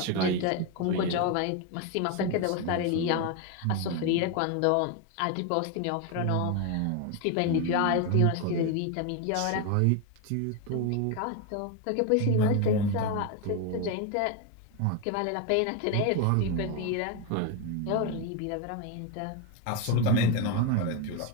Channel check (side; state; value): both; different; correlation 0.02